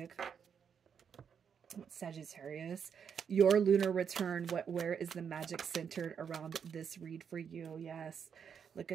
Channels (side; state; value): left; quieter; 7.2 dB